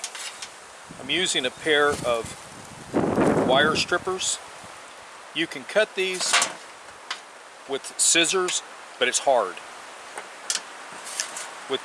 I'm using a pair of wire strippers. You can cut these with scissors, but it's hard. With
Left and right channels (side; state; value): both; identical; correlation 1.00